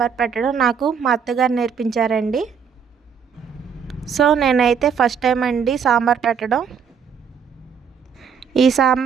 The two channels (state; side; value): quieter; left; 6.9 dB